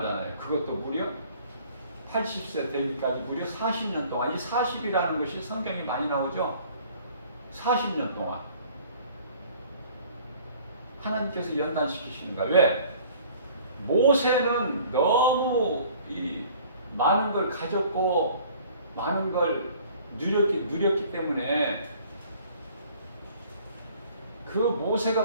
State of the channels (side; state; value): both; inverted; correlation -0.52